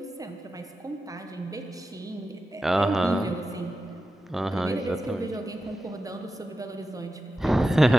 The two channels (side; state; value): both; normal; correlation 0.91